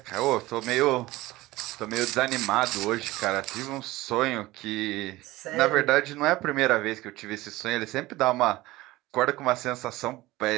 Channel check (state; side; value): quieter; left; 18.6 dB